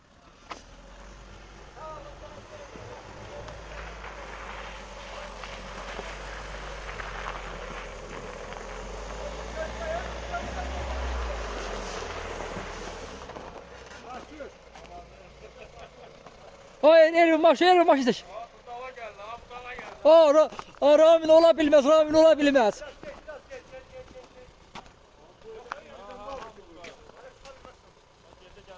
Ay Elvin baş isteş. Ramin olabilmez, Ramin olabilmez.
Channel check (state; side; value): identical; both; correlation 1.00